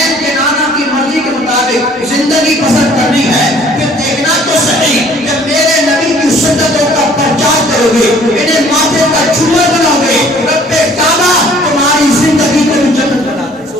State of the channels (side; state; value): both; normal; correlation 0.56